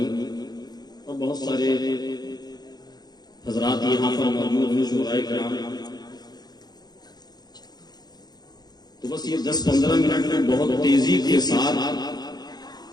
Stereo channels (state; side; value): late; right; 0.20 ms